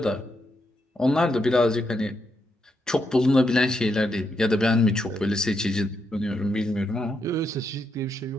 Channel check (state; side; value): normal; both; correlation 0.81